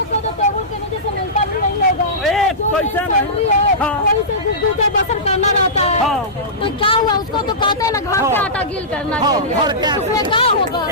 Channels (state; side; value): normal; both; correlation -0.18